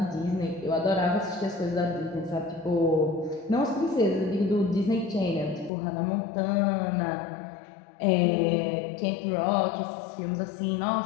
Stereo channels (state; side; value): drops out; right; at 5.7 s